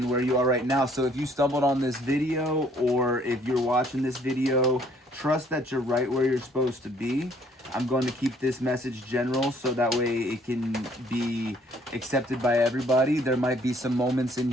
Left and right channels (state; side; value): normal; both; correlation 0.62